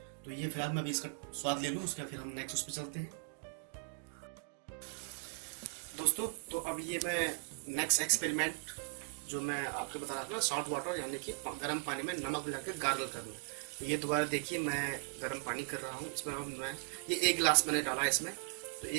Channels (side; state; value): left; quieter; 37.0 dB